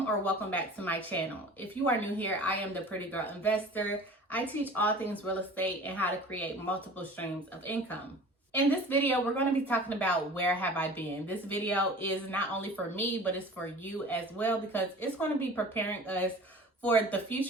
back to my channel. If you are new here, I am the Pretty Girl Investor. I teach all things real estate and how to create multiple streams of income. In this video, we're going to be talking about where have I been. This video is not only for me, but it's for you as well, because it's going to be preparing us for the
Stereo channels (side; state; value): both; normal; correlation 0.42